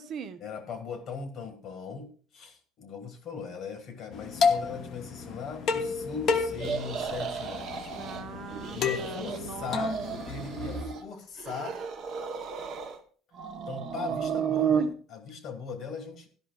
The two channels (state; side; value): normal; both; correlation 0.59